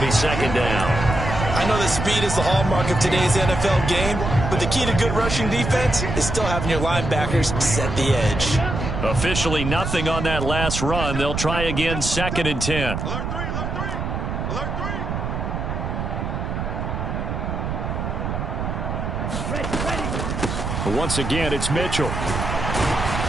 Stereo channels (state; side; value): noise; right; rumble, 3 dB below the sound